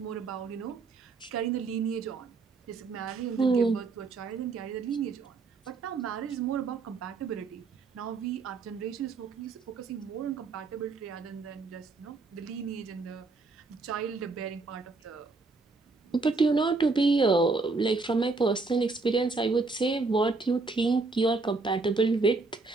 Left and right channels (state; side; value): quieter; left; 3.9 dB